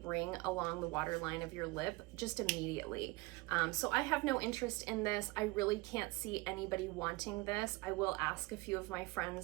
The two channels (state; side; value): quieter; left; 23.0 dB